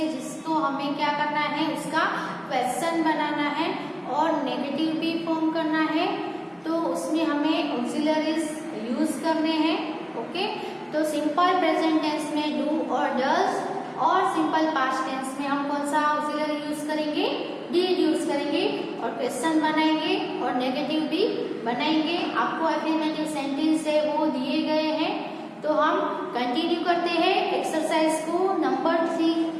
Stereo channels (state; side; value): identical; both; correlation 1.00